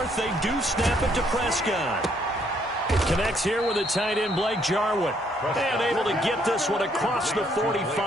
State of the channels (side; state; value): both; normal; correlation 0.69